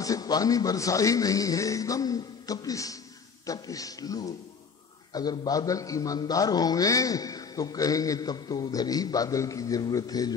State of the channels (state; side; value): quieter; right; 5.8 dB